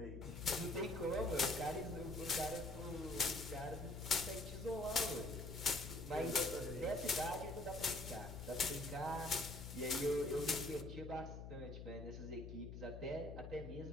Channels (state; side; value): noise; left; hum, 9 dB below the sound